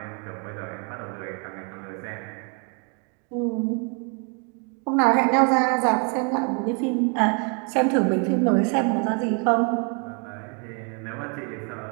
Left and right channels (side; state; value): left; quieter; 37.2 dB